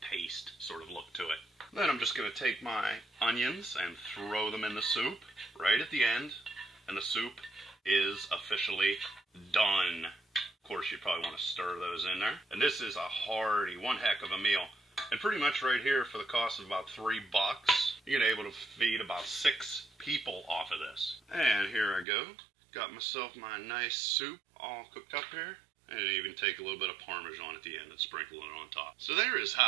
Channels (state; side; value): drops out; left; at 22.1 s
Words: paste sort of look to it. Then I'm just going to take my onions and throw them in the soup right at the end, and the soup is officially done. Of course, you probably want to stir those in there. And this is a hearty, one heck of a meal. And pretty much right here, for the cost of about $3, you're gonna be able to feed about 6 people off of this. And here I go. Got myself my nice soup all cooked up here. And even take a little bit of Parmesan at the end and sprinkle it on top. So there is